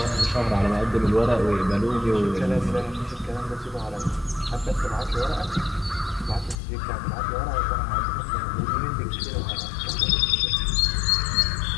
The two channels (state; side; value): drops out; right; at 6.6 s